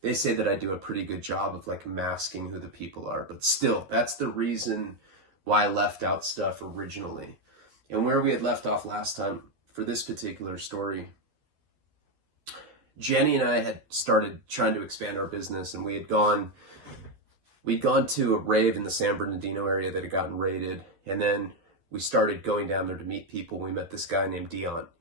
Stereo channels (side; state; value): left; late; 12 ms